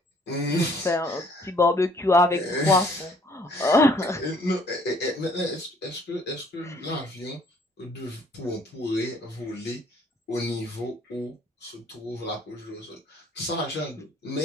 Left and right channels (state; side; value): normal; both; correlation 0.60